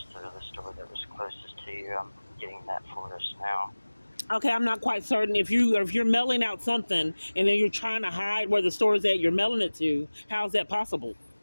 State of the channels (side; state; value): both; inverted; correlation -1.00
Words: to the store that was closest to you. I'm getting that for us now. Okay, I'm not quite certain. If you're mailing out something and then you're trying to hide where the store is at you're mailing it to, how's that possible?